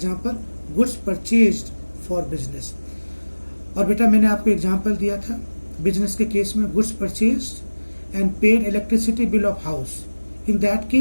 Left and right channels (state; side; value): inverted; both; correlation -1.00